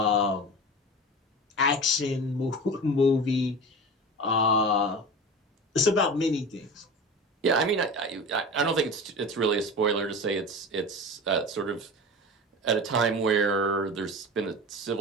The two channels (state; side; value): normal; both; correlation 0.31